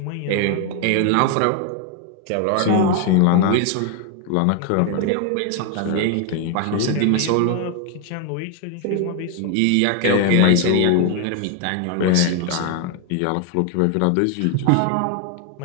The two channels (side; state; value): both; different; correlation 0.01